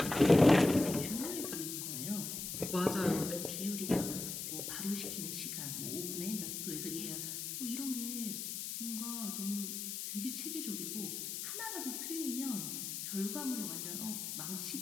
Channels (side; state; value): left; noise; hiss, 4 dB below the sound